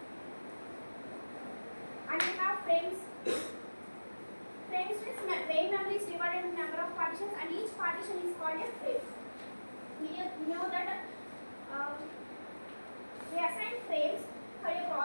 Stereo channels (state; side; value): inverted; both; correlation -1.00